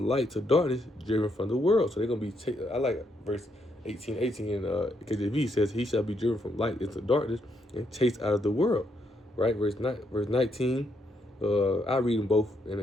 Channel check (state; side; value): normal; both; correlation 0.76